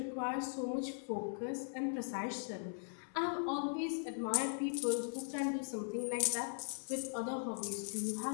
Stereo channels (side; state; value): right; silent; digital silence